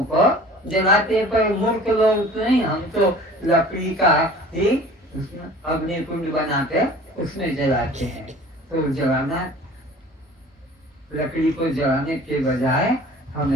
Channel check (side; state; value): both; normal; correlation 0.45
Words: को जलाते, पर मूर्ख लोग नहीं, हम तो लकड़ी का ही अग्नि कुंड बनाते उसमें जलाते हैं। तो जलाना, लकड़ी को जलाने के बजाय